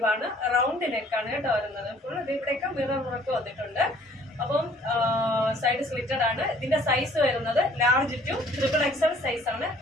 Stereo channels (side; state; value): both; normal; correlation 0.57